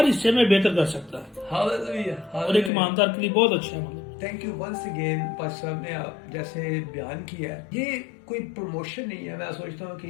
حصے میں بہتر کر سکتا ہے، اور ایک ایماندار کے لیے بہت اچھا ہے. Thank you once again. پاس صاحب نے آپ جیسے بیان کیا ہے، یہ کوئی پروموشن نہیں ہے. میں سوچتا ہوں کہ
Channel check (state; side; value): drops out; right; at 2.7 s